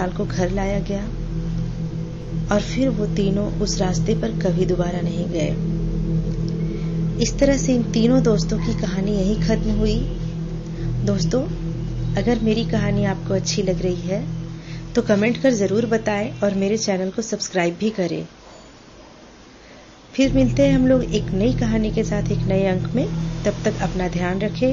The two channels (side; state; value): both; identical; correlation 1.00